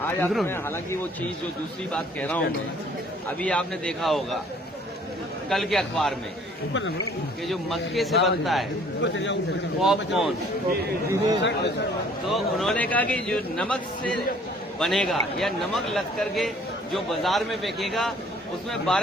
आपने, हालांकि वो चीज जो दूसरी बात कह रहा हूं मैं, अभी आपने देखा होगा कल के अखबार में कि जो मक्के से बनता है पॉपकॉर्न, तो उन्होंने कहा कि जो नमक से बनेगा या नमक लग करके जो बाजार में बिकेगा उसमें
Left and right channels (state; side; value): normal; both; correlation 0.56